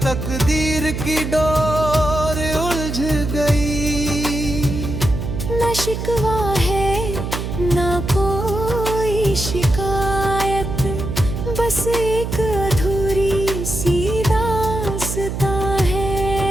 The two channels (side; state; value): right; noise; hum, 4 dB below the sound